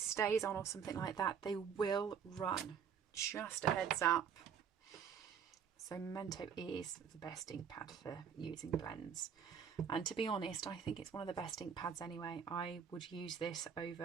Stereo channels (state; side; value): quieter; left; 7.3 dB